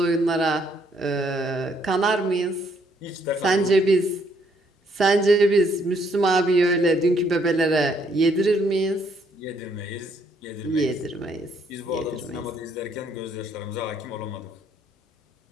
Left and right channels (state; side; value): normal; both; correlation 0.69